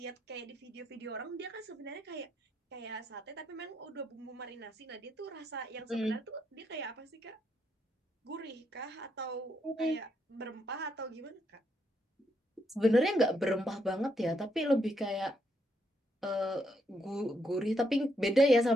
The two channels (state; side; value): normal; both; correlation 0.77